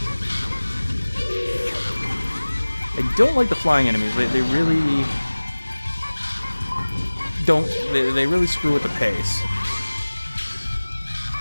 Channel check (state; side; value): inverted; both; correlation -1.00